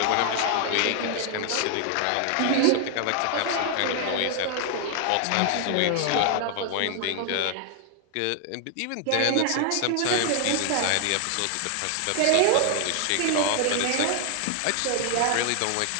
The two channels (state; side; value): different; both; correlation 0.00